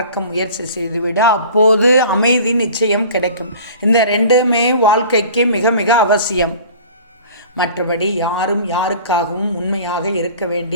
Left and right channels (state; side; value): inverted; both; correlation -0.43